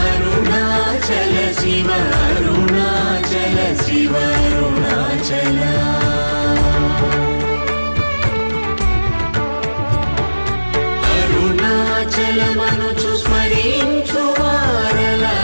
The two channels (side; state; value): both; inverted; correlation -1.00